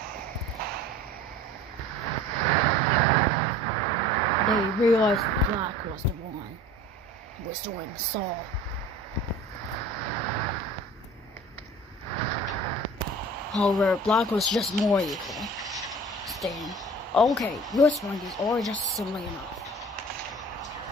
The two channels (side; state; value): both; normal; correlation 0.44